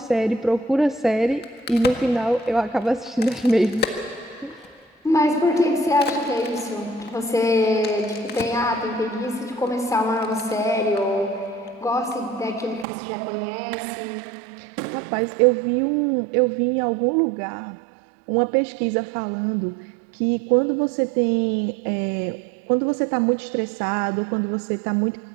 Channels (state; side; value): drops out; left; at 12.9 s